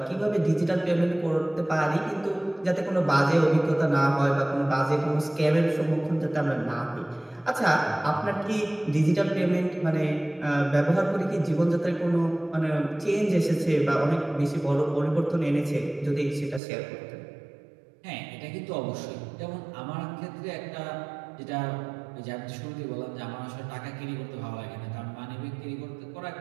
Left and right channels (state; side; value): drops out; left; at 16.6 s